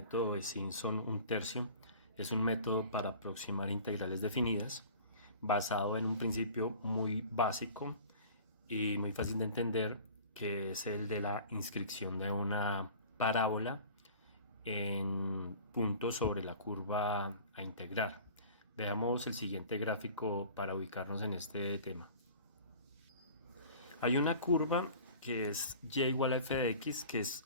de Simpson un tercio. Es un método para aproximar integrales definidas, basado en un principio muy básico y muy fácil de entender, que es el de la inscripción de una parábola en puntos sobre la curva a integrar. Veamos el siguiente gráfico para ubicarnos en este tema. Hay una curva que es y igual a f de x, que es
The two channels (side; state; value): both; inverted; correlation -0.43